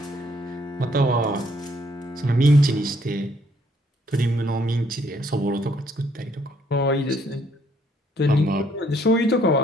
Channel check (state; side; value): normal; both; correlation 0.67